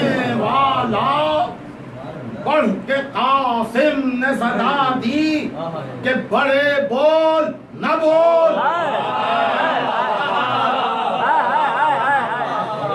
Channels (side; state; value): both; identical; correlation 1.00